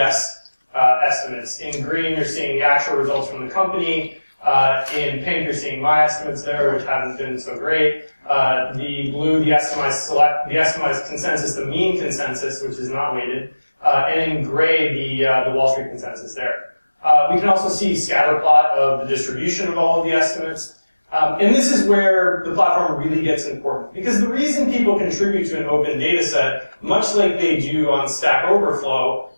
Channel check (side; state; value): both; inverted; correlation -1.00